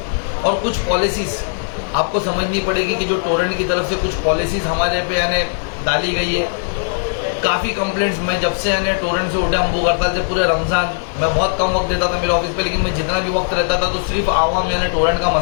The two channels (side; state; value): right; silent; digital silence